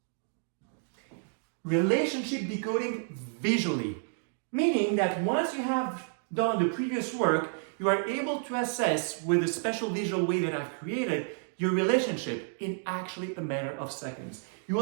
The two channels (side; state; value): left; silent; 58 dB below the other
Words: relationship decoding visually, meaning that once you have done the previous work, you are able to assess with a special visual way that I've created your relationship in actually a matter of seconds. You